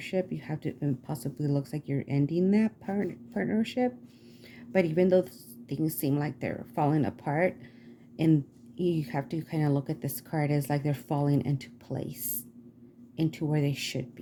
You have to, and possibly looks like you're ending that partnership. But even though things seem like they're falling apart, and you have to kind of look at this card as like they're falling into place, into where they should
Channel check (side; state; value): both; identical; correlation 1.00